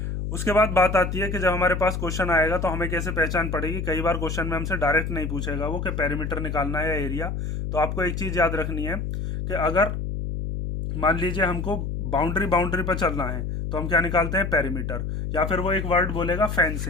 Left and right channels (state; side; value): noise; left; hum, 3 dB below the sound